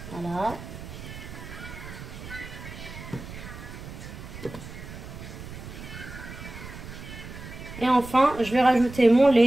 Voilà. Et enfin, je vais rajouter mon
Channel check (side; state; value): right; noise; rumble, 12 dB below the sound